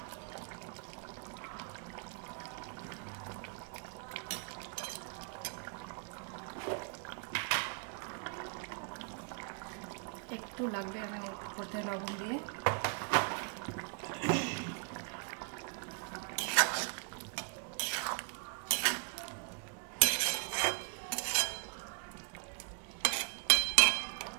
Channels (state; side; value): quieter; left; 34.6 dB